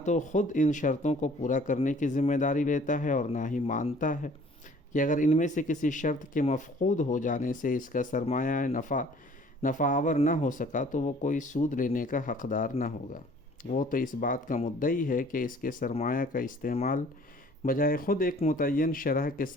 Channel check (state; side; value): normal; both; correlation 0.53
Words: تو خود ان شرطوں کو پورا کرنے کی ذمہ داری لیتا ہے اور نہ ہی مانتا ہے کہ اگر ان میں سے کسی شرط کے مفقود ہو جانے سے اس کا سرمایہ نفع آور نہ ہو سکا تو وہ کوئی سود لینے کا حقدار نہ ہوگا۔ وہ تو اس بات کا مدعی ہے کہ اس کے سرمایہ کا استعمال بجائے خود ایک متعین شرح کے